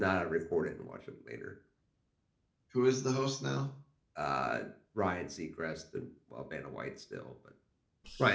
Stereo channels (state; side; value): identical; both; correlation 1.00